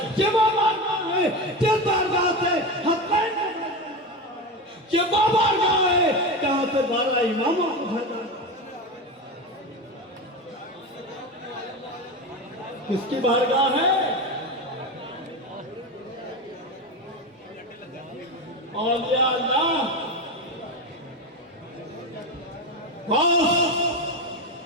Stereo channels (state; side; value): normal; both; correlation 0.20